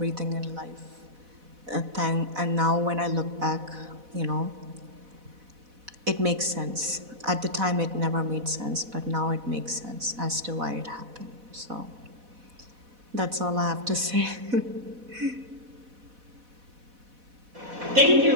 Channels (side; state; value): left; late; 4.1 ms